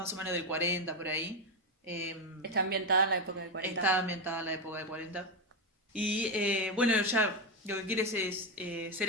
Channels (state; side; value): normal; both; correlation 0.09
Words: o menos del 40 por ahí. Está ambientada en la época del 40. Está ambientada en la época del 40. Y bueno, ya lo que quiere es ser